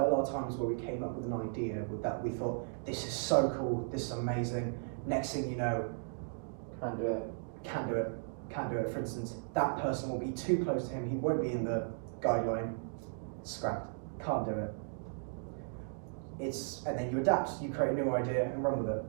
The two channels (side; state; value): left; silent; digital silence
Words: a lot of times where we came up with an idea with that we thought, this is so cool, this is amazing. Next thing you know, Can't do it. For instance, that person will be too close to him, he won't be in the guideline, scrapped, can't do it. And then you adapt, you create a new idea and run with it.